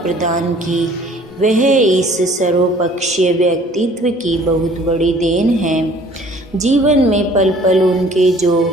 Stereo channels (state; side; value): normal; both; correlation 0.54